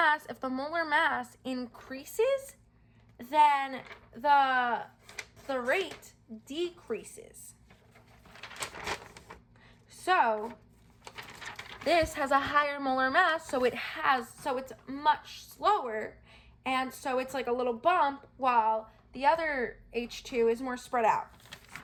if the molar mass increases, then the rate decreases. So this has a higher molar mass, so it's much slower, and so it's like a little bump, while the other H2 is more spread out.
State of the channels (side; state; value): both; identical; correlation 1.00